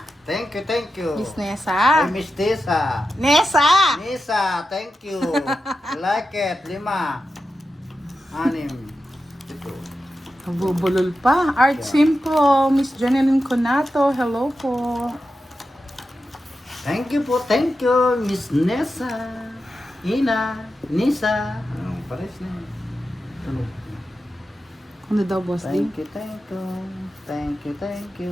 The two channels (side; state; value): both; normal; correlation 0.91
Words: Thank you, thank you. Miss Ay, Nessa. Miss Tessa. Nessa! Nisa, thank you. Like it. 5. 6. Ito. Bubulol pa. Art Simple. Miss Janeline Conato. Hello po. Thank you po, thank you, Miss Nessa. Ina, Nisa. Pares na yun. Tunog. Ano daw, Boss D? Thank you, thank you. Thank you, thank